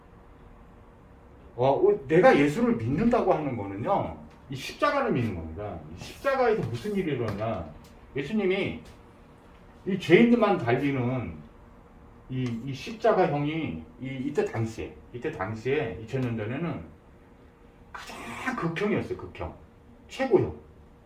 거예요. 내가 예수를 믿는다고 하는 거는요, 이 십자가를 믿는 겁니다. 이 십자가에서 무슨 일이 일어나냐? 예수님이 이 죄인들만 달리는 이 십자가형이 이때 당시에 2000년 전에는 가장 극형이었어요. 극형, 최고형.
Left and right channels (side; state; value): both; identical; correlation 1.00